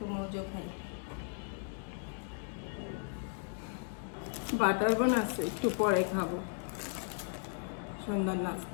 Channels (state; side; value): silent; right; 54 dB below the other